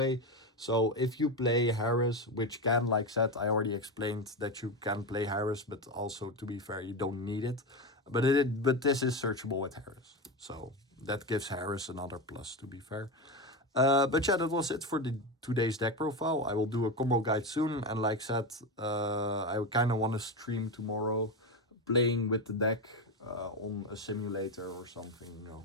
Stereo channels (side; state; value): both; normal; correlation 0.16